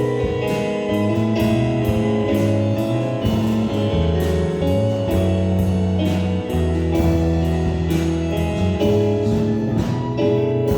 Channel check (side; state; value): both; identical; correlation 1.00